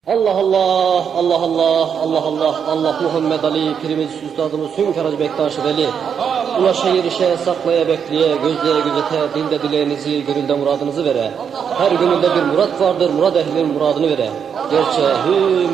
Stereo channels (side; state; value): left; quieter; 7.3 dB